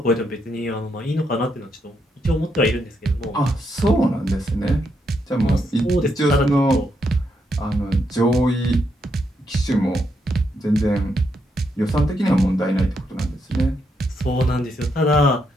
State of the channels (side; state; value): both; normal; correlation 0.79